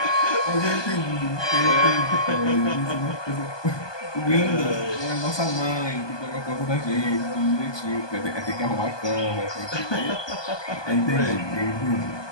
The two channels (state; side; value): late; right; 1.2 ms